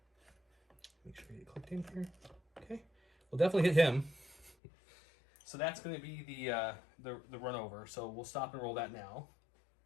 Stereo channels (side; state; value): right; drops out; at 4.5 s